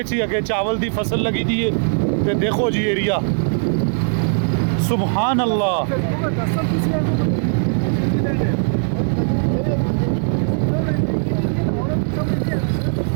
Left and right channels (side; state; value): left; silent; digital silence